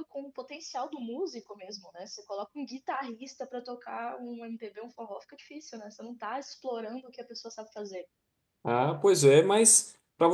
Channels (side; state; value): both; identical; correlation 1.00